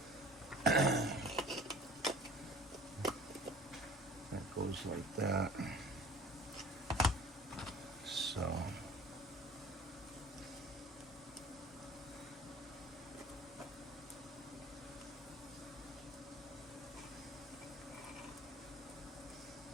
That goes like that. So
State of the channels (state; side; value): normal; both; correlation 0.46